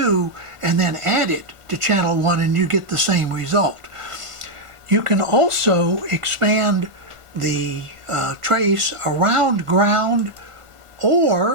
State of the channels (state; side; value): late; left; 1.5 ms